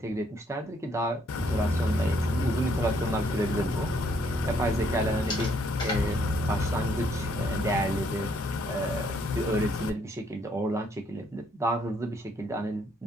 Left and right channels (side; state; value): both; normal; correlation 0.69